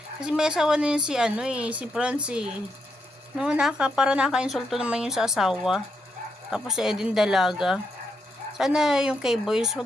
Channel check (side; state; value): both; normal; correlation 0.80